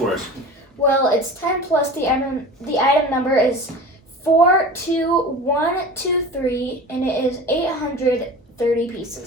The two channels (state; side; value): normal; both; correlation 0.36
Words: us? Well, it's 10 plus the item number is 42123, and it is 830